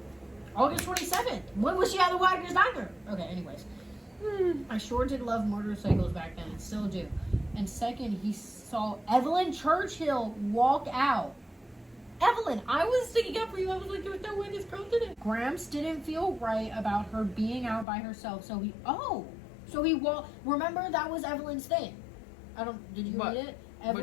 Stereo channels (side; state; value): right; drops out; at 17.9 s